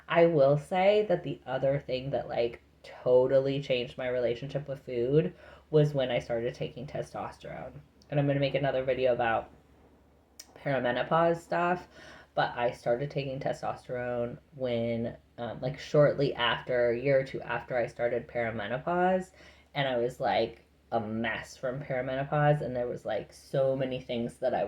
I will say that the other thing that like totally changed my relationship with food was when I started taking testosterone. And I'm going to make another video about perimenopause stuff. But I started taking testosterone when, like, shortly after, a year or two after I started perimenopause. And I was like a mess from perimenopause. And there was like so many things that I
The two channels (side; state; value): both; identical; correlation 1.00